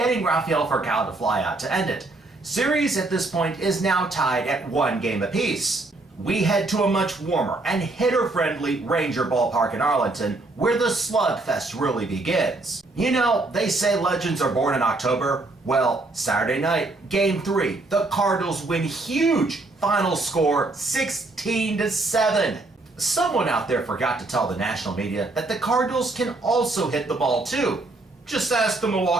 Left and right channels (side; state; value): left; quieter; 3.1 dB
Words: Rafael Furcal to fly out to end it. Series at this point is now tied at 1 game apiece. We head to a much warmer and hitter-friendly Ranger Ballpark in Arlington, where the slugfest really begins. You know, they say legends are born in October. Well, Saturday night, Game 3, the Cardinals win huge. Final score 16-7. Someone out there forgot to tell the national media that the Cardinals can also hit the ball too. Just ask the